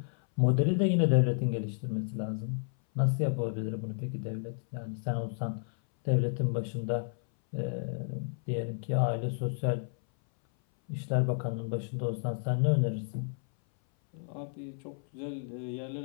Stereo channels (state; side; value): silent; right; 57 dB below the other